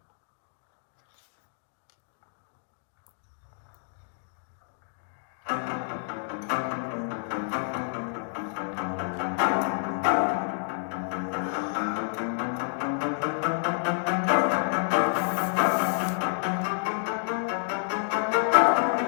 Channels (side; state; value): right; silent; digital silence